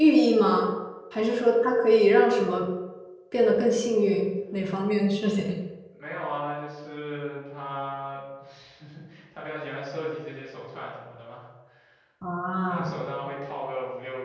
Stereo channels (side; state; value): both; identical; correlation 1.00